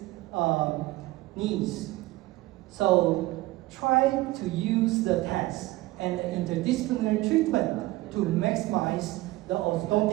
needs. So try to use the test and the interdisciplinary treatment to maximize the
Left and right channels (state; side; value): quieter; left; 18.8 dB